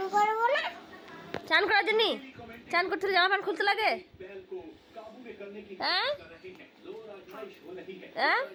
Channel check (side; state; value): both; identical; correlation 1.00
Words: করবো না। চান করার জন্য? চান করতে জামা প্যান্ট খুলতে লাগে? হ্যাঁ হ্যাঁ,